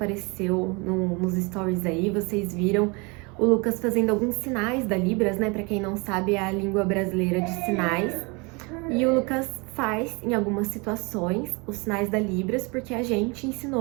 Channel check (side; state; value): left; quieter; 29.0 dB